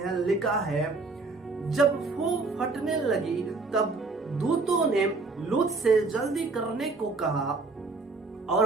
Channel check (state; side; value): quieter; left; 3.8 dB